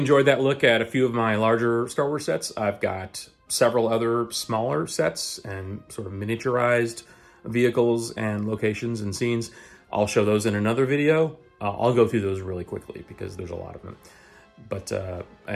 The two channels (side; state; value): both; identical; correlation 1.00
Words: that look at a few of my larger Star Wars sets. I've got several other smaller sets and sort of miniaturized vehicles and locations and scenes. I'll show those in another video. I'll go through those really quickly because there's a lot of them. But